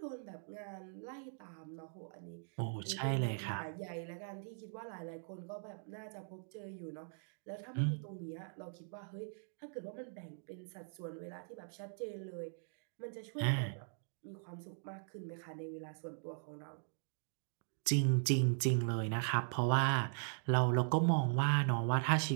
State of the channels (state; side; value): silent; left; digital silence